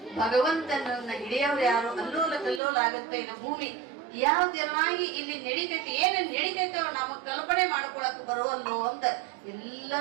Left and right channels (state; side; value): drops out; left; at 2.6 s